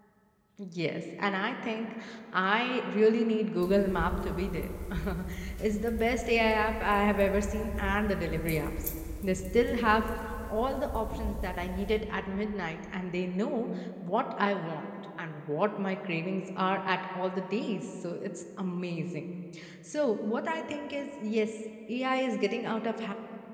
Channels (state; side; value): identical; both; correlation 1.00